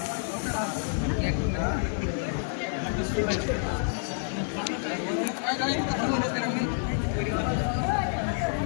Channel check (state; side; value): silent; right; 59 dB below the other